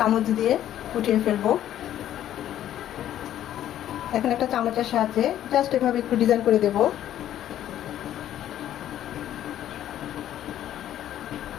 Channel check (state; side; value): quieter; right; 11.8 dB